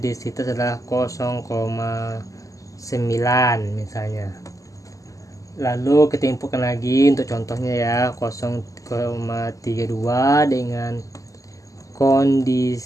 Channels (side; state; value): right; late; 0.16 ms